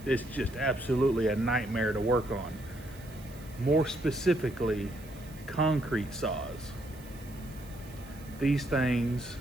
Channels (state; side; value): noise; right; hiss, 22 dB below the sound